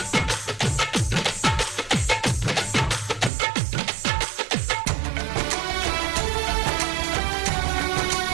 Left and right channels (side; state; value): left; drops out; at 3.3 s